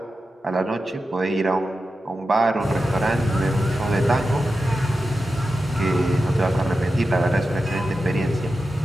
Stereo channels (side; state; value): both; normal; correlation 0.91